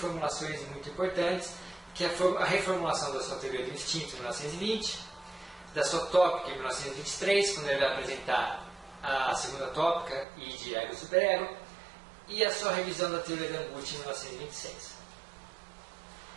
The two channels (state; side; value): drops out; left; at 10.2 s